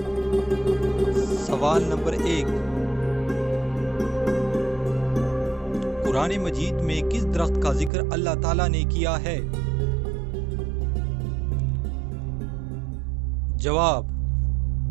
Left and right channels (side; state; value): left; drops out; at 7.9 s